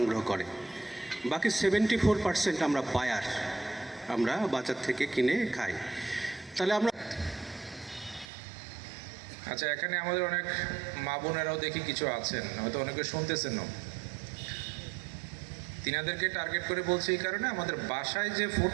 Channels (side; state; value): left; drops out; at 8.2 s